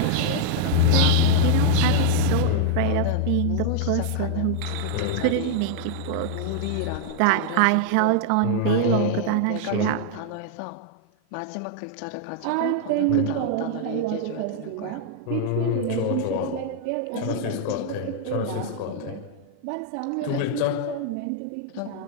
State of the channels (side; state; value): both; different; correlation 0.00